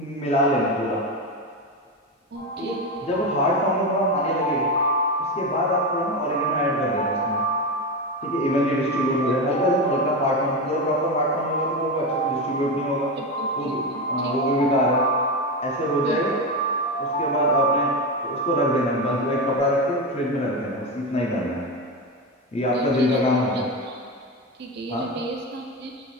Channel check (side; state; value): both; normal; correlation 0.16